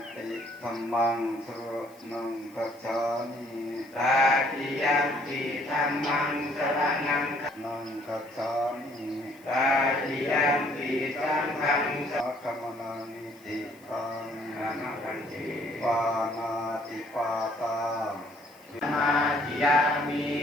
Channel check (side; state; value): left; noise; hiss, 27 dB below the sound